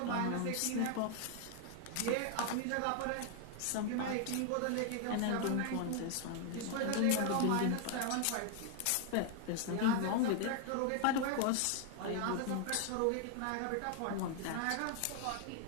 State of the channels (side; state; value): both; different; correlation 0.00